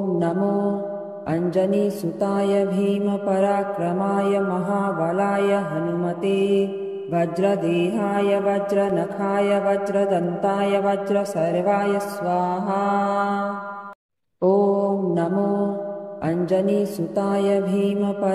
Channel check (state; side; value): identical; both; correlation 1.00